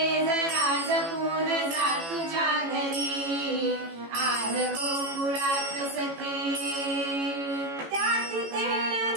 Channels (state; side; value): late; left; 18 ms